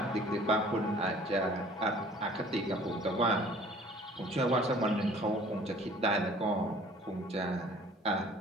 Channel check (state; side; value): normal; both; correlation 0.51